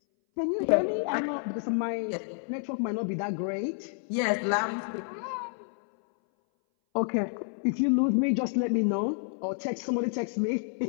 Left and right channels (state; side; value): silent; right; 58 dB below the other